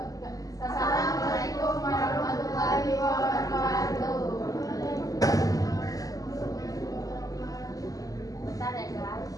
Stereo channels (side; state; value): right; late; 0.17 ms